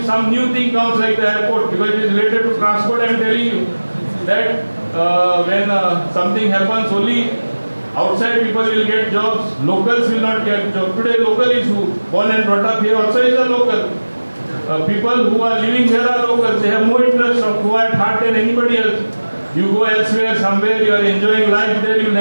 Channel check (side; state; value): both; inverted; correlation -1.00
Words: some new thing comes like the airport, because it is related to transport, I am telling you that when something happens, only outside people will get jobs, locals will not get jobs. Today local is who? Born and brought up here also is a local. People who are living here are locals. They have more interest of who at heart than anybody else. You go elsewhere, somewhere, you are enjoying life there, you will